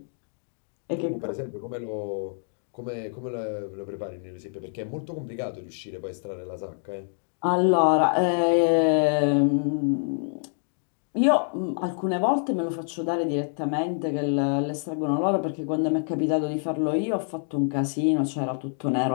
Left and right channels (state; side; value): silent; right; digital silence